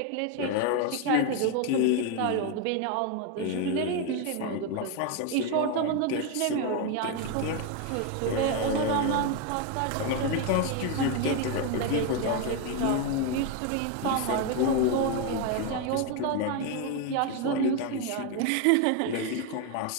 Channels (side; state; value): both; different; correlation 0.01